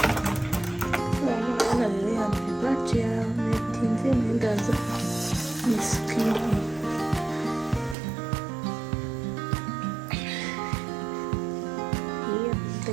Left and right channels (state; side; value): drops out; left; at 8.0 s